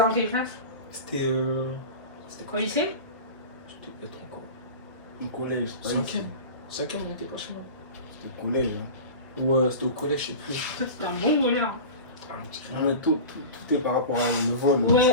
dans quelle classe? C'était. C'était Au quoi? lycée? C'était peut-être encore. Au collège. Cinquième. Cinquième, on était pas chez moi. C'était au collège. Ouais, c'était au collège, je sais plus. Toi, t'étais un bon voleur. Ah, on dirait- Non, mais tout est par rapport à le vol.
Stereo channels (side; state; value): both; inverted; correlation -0.32